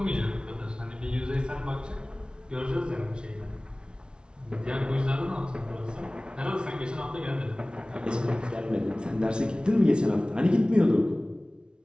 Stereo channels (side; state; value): left; late; 0.056 ms